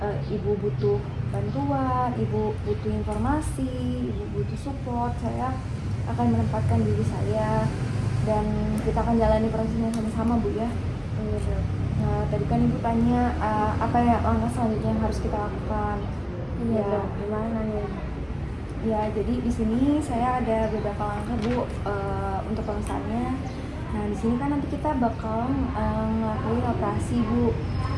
Ibu butuh bantuan, Ibu butuh informasi, Ibu butuh support, saya akan menempatkan diri saya dan kita akan jalani prosesnya sama-sama Bu ya. Nah, tadi kan Ibu tanya apa ya langkah selanjutnya yang harus kita lakukan. Iya Ya, dok, gimana nih? ya jadi di sini saya ada beberapa langkah Bu untuk pemesannya. Nah, di sini kan nanti kita bakal ngelakuin operasi Bu.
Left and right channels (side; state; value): both; identical; correlation 1.00